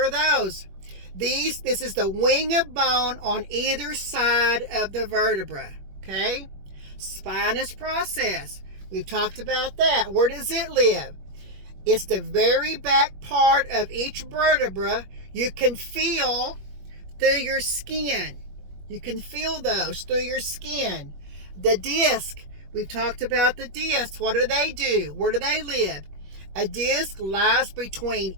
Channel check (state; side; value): late; left; 21 ms